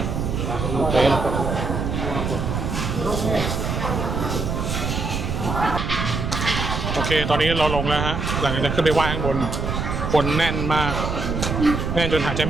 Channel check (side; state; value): right; noise; rumble, 2 dB below the sound